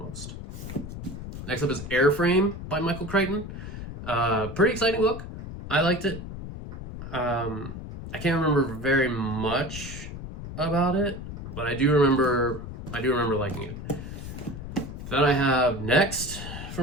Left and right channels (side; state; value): left; noise; rumble, 9 dB below the sound